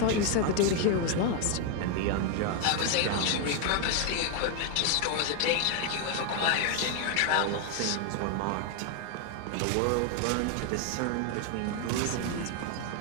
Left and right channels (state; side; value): different; both; correlation 0.01